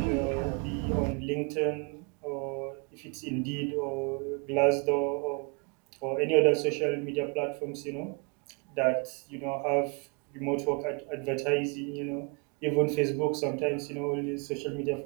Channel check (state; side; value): quieter; left; 34.0 dB